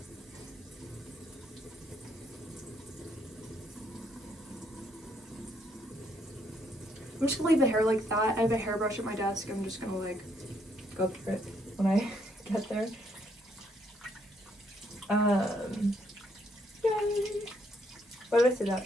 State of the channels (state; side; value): normal; both; correlation 0.72